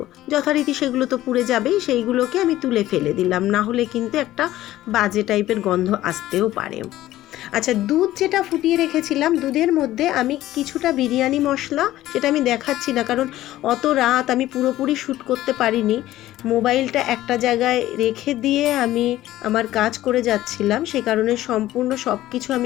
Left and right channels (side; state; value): right; quieter; 14.8 dB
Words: যথারীতি সেগুলো তো পুড়ে যাবেই, সেইগুলোকে আমি তুলে ফেলে দিলাম, না হলে কিন্তু একটা বাজে টাইপের গন্ধ আসতেও পারে। আচ্ছা, দুধ যেটা ফুটিয়ে রেখেছিলাম, দুধের মধ্যে আমি কিছুটা বিরিয়ানি মশলা, সেটা আমি দেখাচ্ছি না কারণ অত রাত আমি পুরোপুরি শ্যুট করতে পারিনি। মোবাইলটা একটা জায়গায় রেখে দিয়ে আমি আমার কাজ করে যাচ্ছিলাম, সে কারণে সম্পূর্ণ সব কিছু